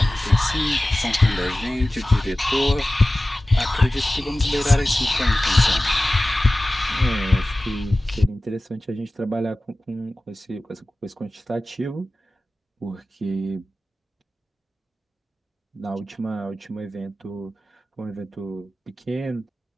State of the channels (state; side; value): normal; both; correlation 0.96